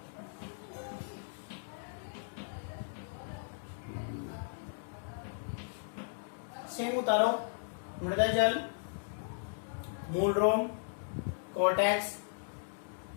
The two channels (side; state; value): right; silent; digital silence